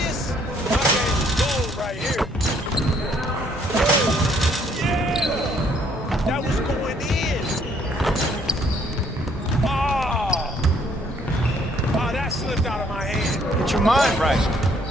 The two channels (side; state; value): both; normal; correlation 0.65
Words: Your mind right.